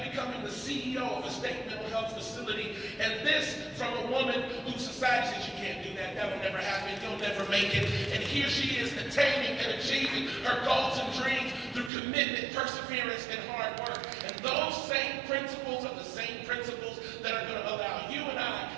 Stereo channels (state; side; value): drops out; left; at 11.9 s